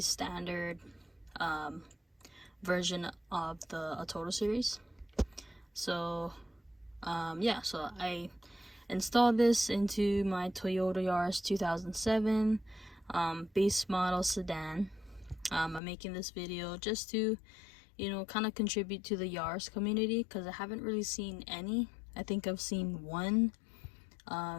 version of the ATOTO series. So yeah, so I installed this into my Toyota Yaris 2007 base model sedan. I'm making this video just to kind of contribute to the Yaris community, because I haven't really seen any. I think I've seen one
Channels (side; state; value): right; drops out; at 15.8 s